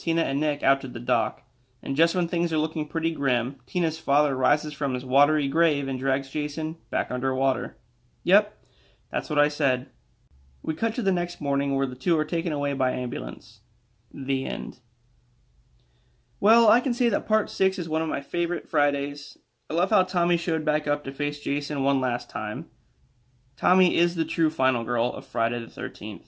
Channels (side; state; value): both; identical; correlation 1.00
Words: and Nick out to the dock. And just when things are looking pretty grim, Tina's father rises from his watery grave and drags Jason back underwater. Yep, that's what I said. We cut to the next morning where the two are taken away by ambulance. The end. Well, I can say that Part 6 is one of my favorite Fridays. I love how Tommy showed back up to face Jason one last time. Tommy is the true final girl of Friday the 13th.